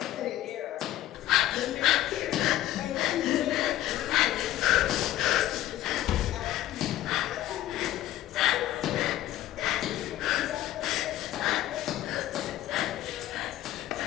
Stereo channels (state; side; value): quieter; right; 14.1 dB